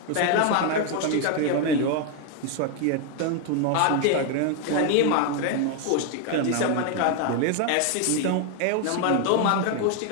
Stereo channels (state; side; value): different; both; correlation 0.01